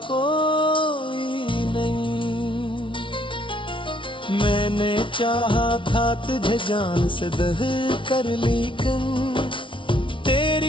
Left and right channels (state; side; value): late; right; 0.25 ms